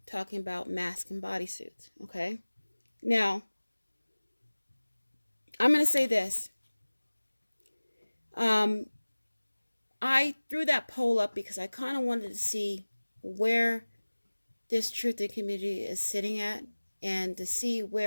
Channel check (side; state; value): both; inverted; correlation -1.00